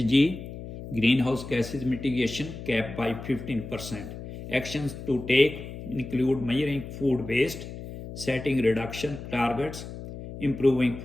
greenhouse gases mitigation cap by 15%. Actions to take include measuring food waste, setting reduction targets, improving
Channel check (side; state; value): left; noise; hum, 11 dB below the sound